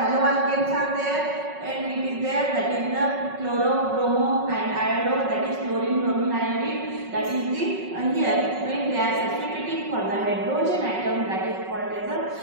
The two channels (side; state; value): left; late; 5.4 ms